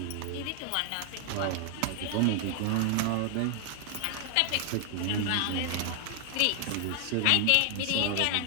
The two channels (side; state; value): both; different; correlation 0.00